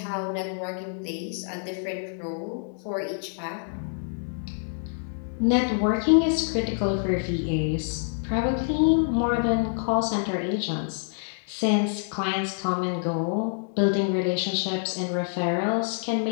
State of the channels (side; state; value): right; silent; 60 dB below the other